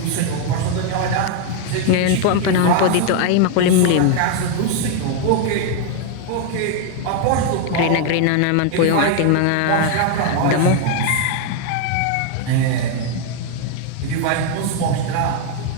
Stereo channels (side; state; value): both; different; correlation 0.00